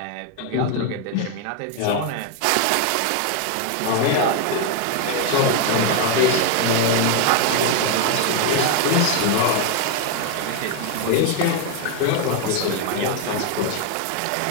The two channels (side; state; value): both; different; correlation 0.01